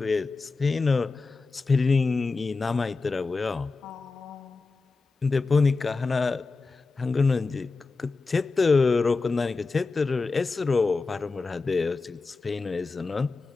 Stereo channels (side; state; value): right; quieter; 4.0 dB